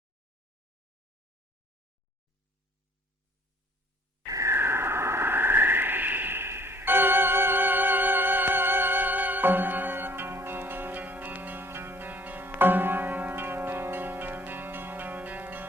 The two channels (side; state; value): both; normal; correlation 0.56